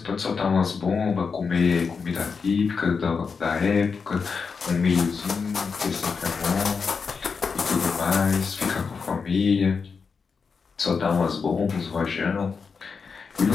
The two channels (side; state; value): right; quieter; 5.4 dB